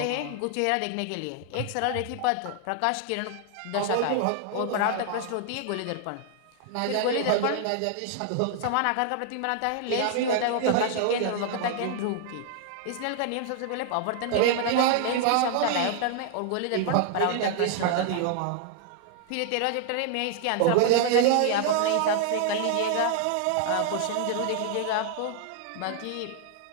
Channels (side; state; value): both; different; correlation 0.00